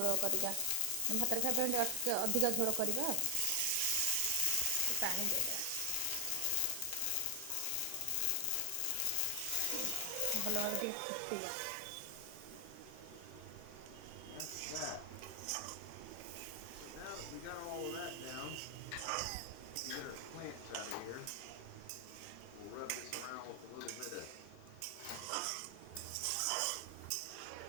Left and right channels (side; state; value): both; different; correlation 0.00